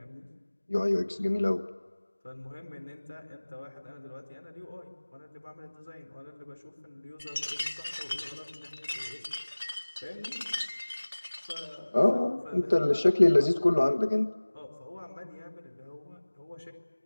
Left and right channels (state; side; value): inverted; both; correlation -1.00